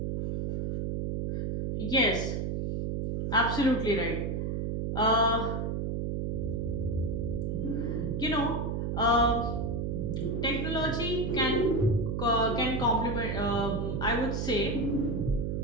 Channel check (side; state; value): right; noise; hum, 1 dB below the sound